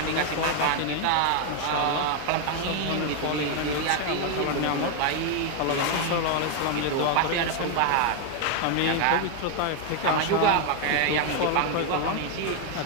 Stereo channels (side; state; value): both; different; correlation 0.01